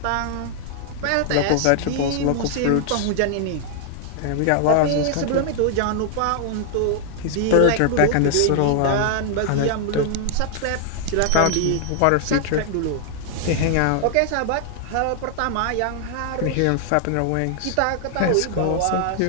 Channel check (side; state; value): both; different; correlation 0.00